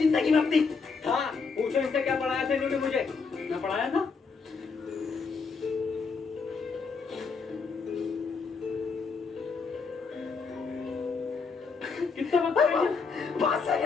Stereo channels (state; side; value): quieter; right; 4.9 dB